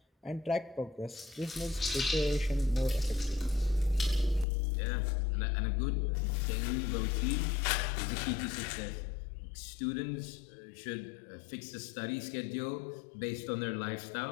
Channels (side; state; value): right; drops out; at 4.5 s